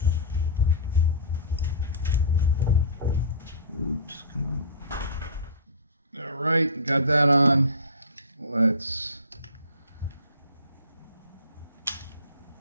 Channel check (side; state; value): both; inverted; correlation -0.32